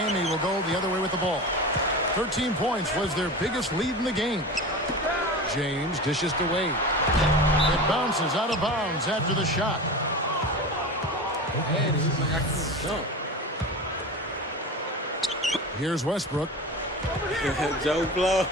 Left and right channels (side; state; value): both; normal; correlation 0.30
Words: will go the other way with the ball. 13 points was their biggest lead in the game. James dishes to Wade. It bounces out of bounds after the shot. Man, he's like, I can't jump. Here's Westbrook. Joe Blow.